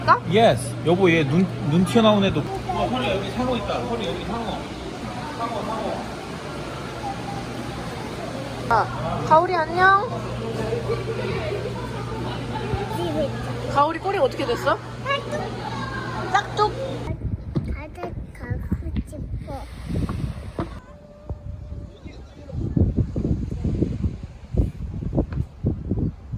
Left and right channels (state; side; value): identical; both; correlation 1.00